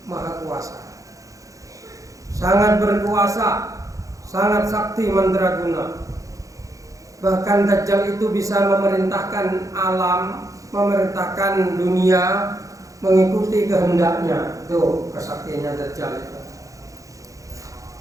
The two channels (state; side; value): late; left; 0.16 ms